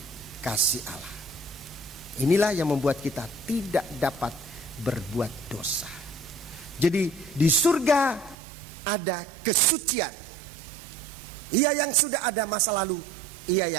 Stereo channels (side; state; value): left; drops out; at 8.3 s